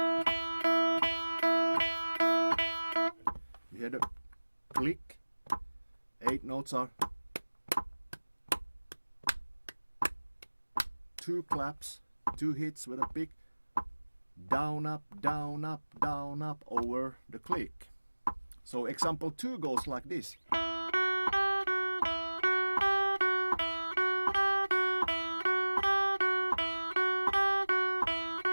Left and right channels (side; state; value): both; inverted; correlation -1.00